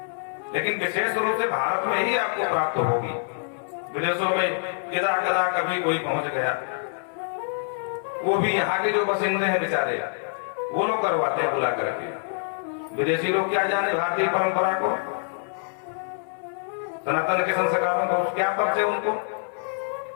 लेकिन विशेष रूप से भारत में ही आपको प्राप्त होगी। विदेशों में यदा कदा कभी कोई पहुंच गया, वो भी यहाँ के जो बसिंदे हैं बेचारे, वो लोग करवाते हैं बुला करके। विदेशी लोग क्या जाने भारतीय परंपरा को, सनातन के संस्कारों को, क्या परिचय उनको।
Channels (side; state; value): right; silent; 61 dB below the other